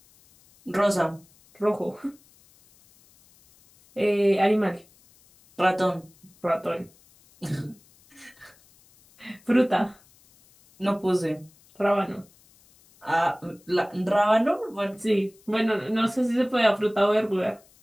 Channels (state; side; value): noise; left; hiss, 29 dB below the sound